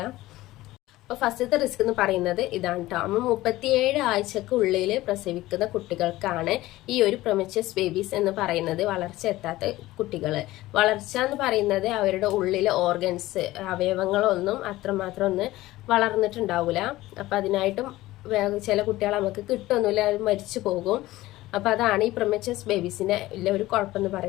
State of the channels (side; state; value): right; quieter; 17.3 dB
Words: അപ്പോൾ ഫസ്റ്റത്തെ റിസ്ക് എന്ന് പറയുന്നത് ഇതാണ് കേട്ടോ. 37 ആഴ്ചക്കുള്ളിൽ പ്രസവിക്കുന്ന കുട്ടികൾക്കാണ് ഈ ഒരു പ്രിമച്ചേഴ്സ് ബേബീസ് എന്ന് പറയുന്നത്, വളർച്ച എത്താത്ത കുട്ടികൾ. വളർച്ച എന്ന് പറയുന്നത് അവരുടെ ഉള്ളിലെ ഓർഗൻസ്, അവയവങ്ങളൊന്നും അത്രമാത്രം ഒന്ന് വളർന്നിട്ടുണ്ടാവില്ല. അപ്പം അതിനായിട്ടും ചില കുട്ടികൾ നമുക്ക് കിട്ടുമൊന്നുമില്ല, അത് മരിച്ചു പോകും. അപ്പോൾ അതാണ് ഈ പ്രിമച്ചേഴ്സ് ബേബീസിൻ്റെ ഉള്ള ഒരു കുഴപ്പമെന്ന്